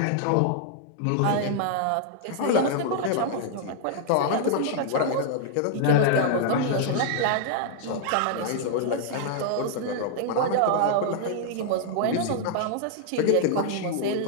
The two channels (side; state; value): both; different; correlation -0.01